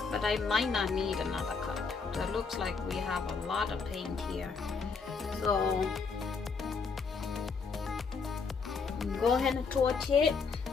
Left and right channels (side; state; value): right; quieter; 5.0 dB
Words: but I might not need another cup. So it looks like we have a lot of paint here. So go ahead and torch it.